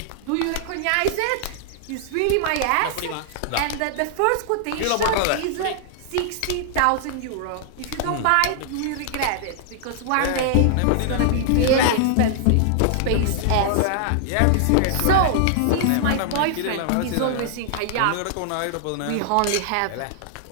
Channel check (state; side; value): different; both; correlation -0.01